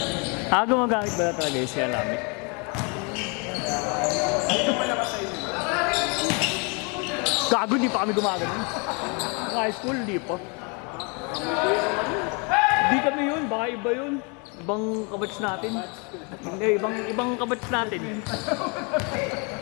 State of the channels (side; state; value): right; quieter; 33.2 dB